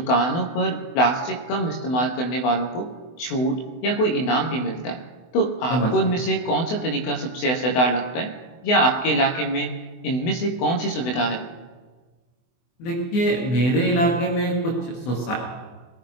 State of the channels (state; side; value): late; right; 24 ms